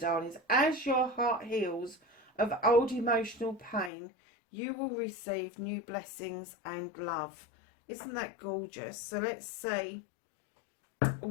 as your heart heals of old emotional pain, you will receive new blessings and love. Isn't that gorgeous? So let's see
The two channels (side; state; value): right; drops out; at 3.9 s